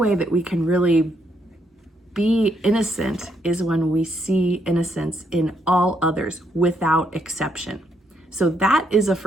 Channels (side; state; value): both; normal; correlation 0.75